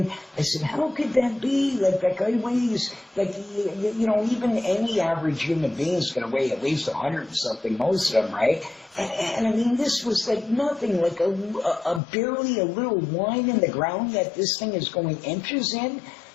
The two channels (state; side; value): drops out; right; at 12.0 s